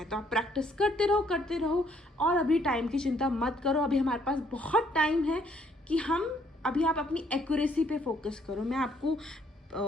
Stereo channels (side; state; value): both; normal; correlation 0.67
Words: तो आप प्रैक्टिस करते रहो और अभी टाइम की चिंता मत करो। अभी हमारे पास बहुत टाइम है कि अभी आप अपनी एक्यूरेसी पे फोकस करो। मैं आपको